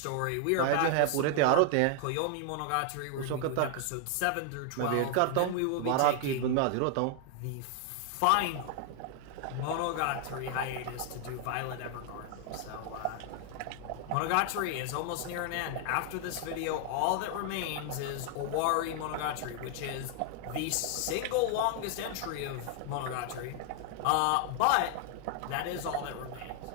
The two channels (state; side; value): different; both; correlation 0.00